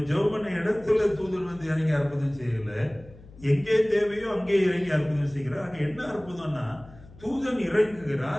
ஜெபம் பண்ண இடத்துல தூதன் வந்து இறங்கி அற்புதம் செய்யல. எங்கே தேவையோ அங்கே இறங்கி அற்புதம் செய்கிறார். அங்க என்ன அற்புதம்னா, தூதன்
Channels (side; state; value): left; noise; hum, 21 dB below the sound